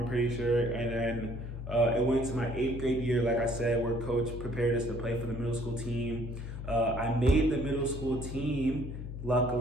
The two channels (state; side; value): noise; left; hum, 8 dB below the sound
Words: pretty sure. And then it went to my 8th grade year, like I said, where coach prepared us to play for the middle school team. I made the middle school team,